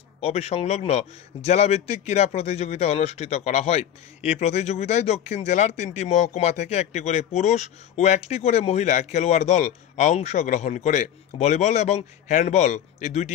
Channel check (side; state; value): right; quieter; 10.1 dB